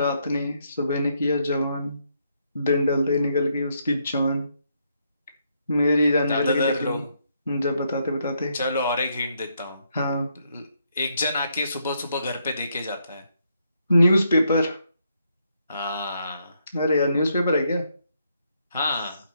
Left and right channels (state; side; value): inverted; both; correlation -0.76